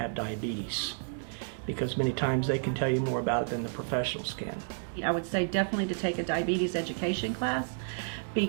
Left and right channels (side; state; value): left; silent; digital silence